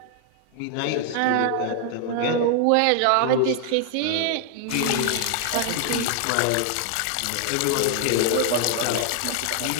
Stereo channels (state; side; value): different; both; correlation 0.00